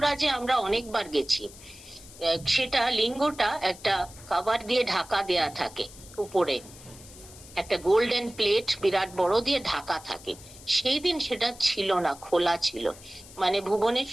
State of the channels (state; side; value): noise; left; hiss, 19 dB below the sound